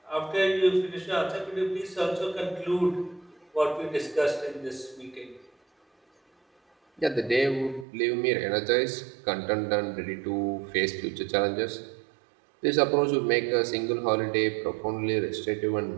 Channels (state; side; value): drops out; left; at 7.9 s